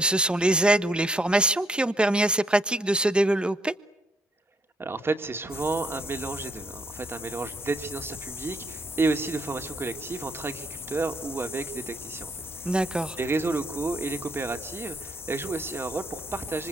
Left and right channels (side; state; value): both; normal; correlation 0.71